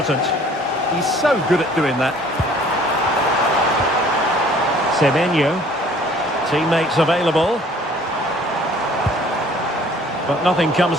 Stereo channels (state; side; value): normal; both; correlation 0.54